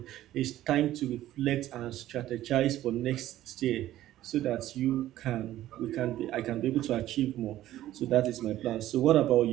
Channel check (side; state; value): left; quieter; 13.9 dB